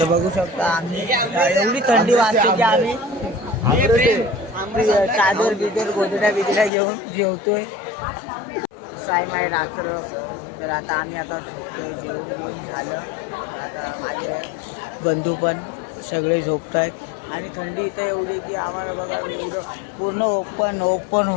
बघू शकता आम्ही एवढी थंडी वाजते की आम्ही चादर बिदर गोदड्या घेऊन जेवतोय. सायमाय रात्र. तर आता आम्ही आता झोपतोय. जेवण झालं. आता माझे बंधू पण सगळे झोपत आहेत. आणि थंडी इथं एवढी की आम्हाला बघा एवढं पूर्ण ओपन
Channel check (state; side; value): drops out; right; at 6.7 s